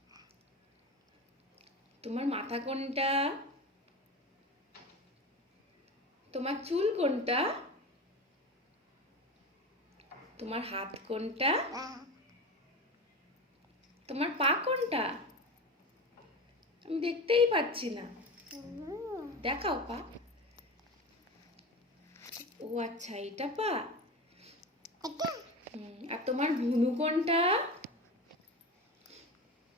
তোমার মাথা কোনটা? তোমার চুল কোনটা? তোমার হাত কোনটা? তোমার পা কোনটা? আমি দেখতেই পাচ্ছি না। দেখাও পা। ও আচ্ছা, এটা পা। আর তোমার ভুনু কোনটা?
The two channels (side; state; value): both; normal; correlation 0.27